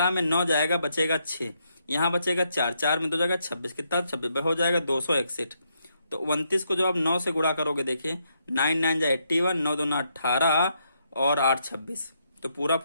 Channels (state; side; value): inverted; both; correlation -0.77